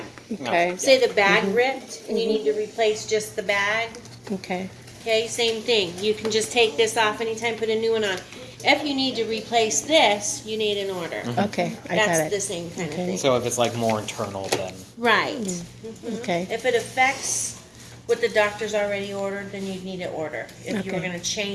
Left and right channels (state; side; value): identical; both; correlation 1.00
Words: Okay. Say the bag ripped and you need to replace just the bag. Okay. Okay, same thing. You can just take this off anytime, put a new one on. If you need to replace this, you need an order. Okay. I That's got the it. same kind of Okay. thing. So if it's like more internal, then Right. Okay. If it affects what the doctor's already ordered, then you'd need an order. If you were Okay. going to